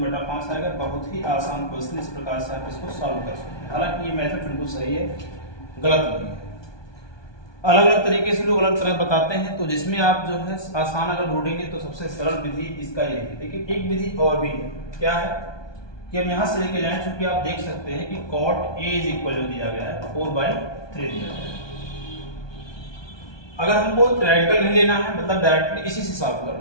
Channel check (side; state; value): right; late; 1.2 ms